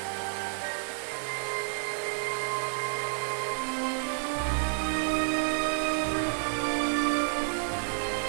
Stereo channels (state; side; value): silent; left; digital silence